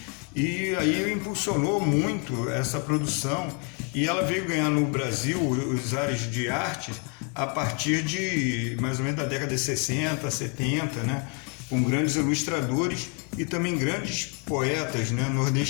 E aí impulsionou muito essa produção, e ela veio ganhar no Brasil os ares de arte a partir de mais ou menos da década de 60, 70, né, com grandes ilustradores e também grandes poetas, né,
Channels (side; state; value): right; quieter; 35.0 dB